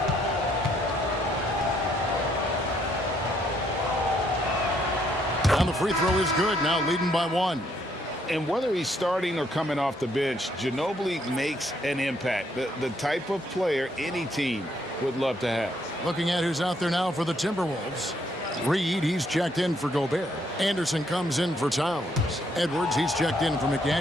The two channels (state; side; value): normal; both; correlation 0.71